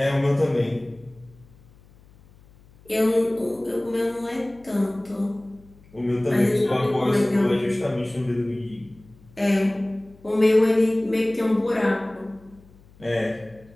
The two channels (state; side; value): noise; left; hum, 26 dB below the sound